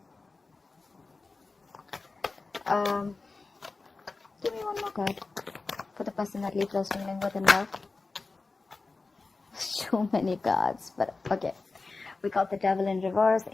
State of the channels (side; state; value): right; quieter; 3.8 dB